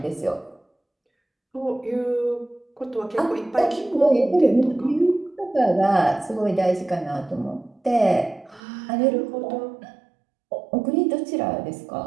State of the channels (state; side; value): drops out; left; at 8.6 s